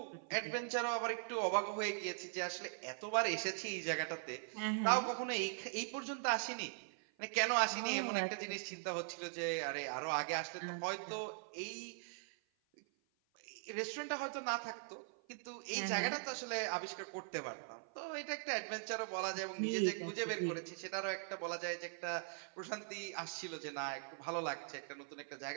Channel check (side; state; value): left; silent; 50 dB below the other